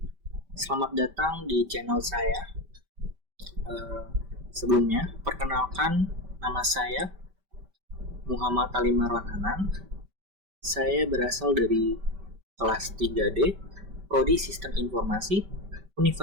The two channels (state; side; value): late; left; 5.1 ms